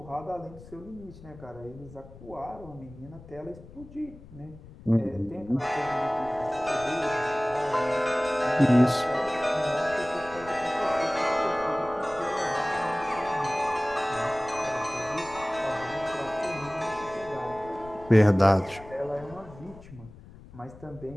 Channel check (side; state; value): left; noise; rumble, 19 dB below the sound